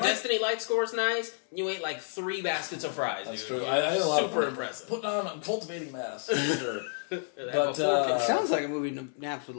Light score is nice. You ate like 3 baskets of fries. That's dude. true. I had a lot super of impressive. I'm cultivating mass. For sure. But it sounds like a movie Naps would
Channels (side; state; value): right; silent; digital silence